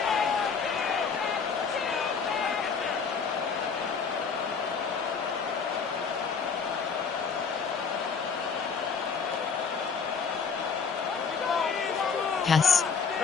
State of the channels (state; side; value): quieter; right; 5.6 dB